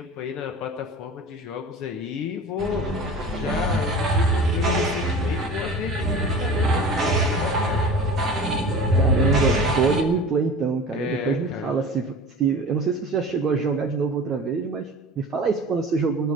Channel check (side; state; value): both; normal; correlation 0.37